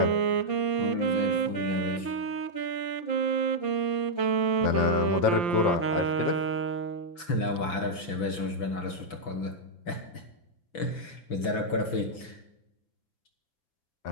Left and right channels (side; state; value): right; late; 6.0 ms